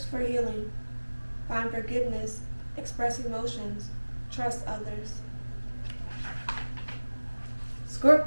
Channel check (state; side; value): inverted; both; correlation -1.00